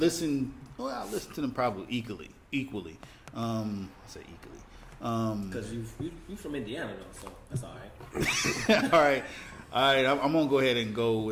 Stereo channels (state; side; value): identical; both; correlation 1.00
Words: Well, I listened to them probably equally. I say equally. Because you from Indiana though, so that's all right. all right. I'm gonna go ahead and go